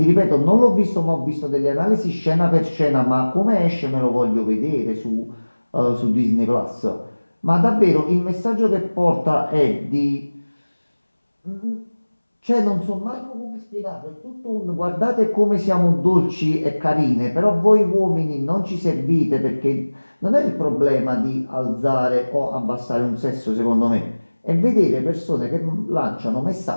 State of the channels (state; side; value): inverted; both; correlation -1.00